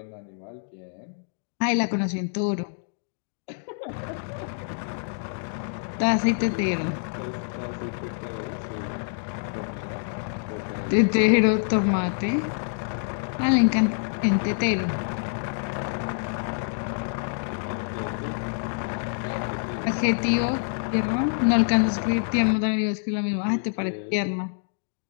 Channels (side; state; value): right; silent; digital silence